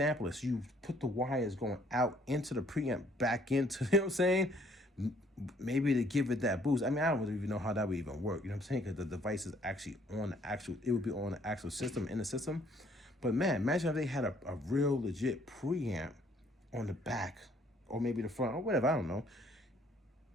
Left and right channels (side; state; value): both; normal; correlation 0.62